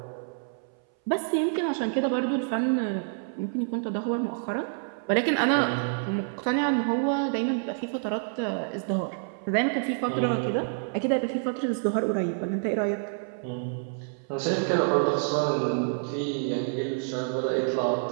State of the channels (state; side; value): silent; left; 60 dB below the other